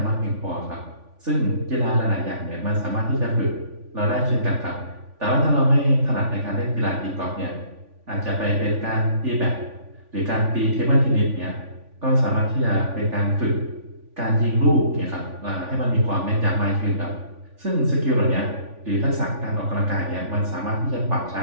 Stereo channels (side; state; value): left; late; 3.5 ms